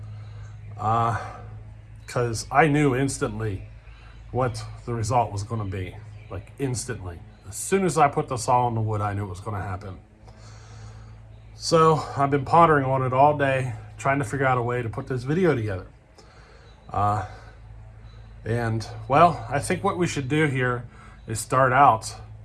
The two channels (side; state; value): both; identical; correlation 1.00